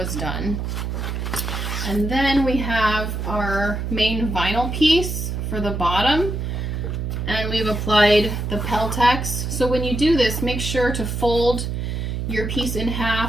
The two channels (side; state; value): right; noise; hum, 3 dB below the sound